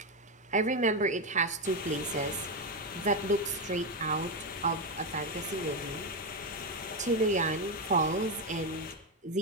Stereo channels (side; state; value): both; normal; correlation 0.09